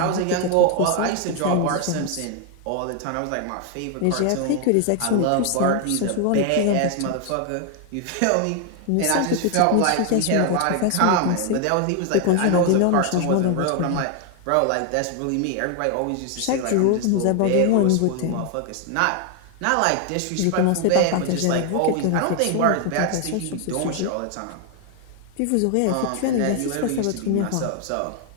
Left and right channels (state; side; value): different; both; correlation 0.00